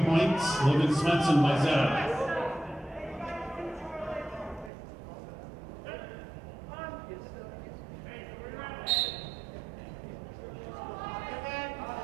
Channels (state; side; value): drops out; left; at 4.7 s